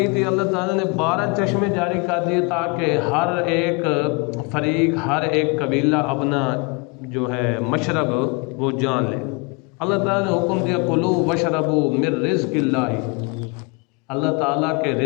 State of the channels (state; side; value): quieter; right; 30.5 dB